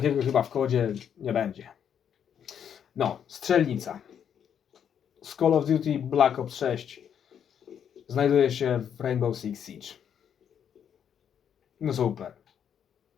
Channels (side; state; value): right; quieter; 8.5 dB